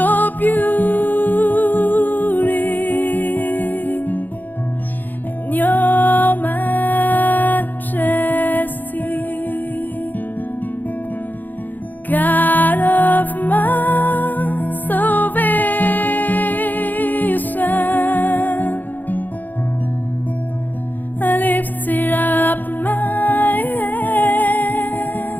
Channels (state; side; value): late; right; 0.086 ms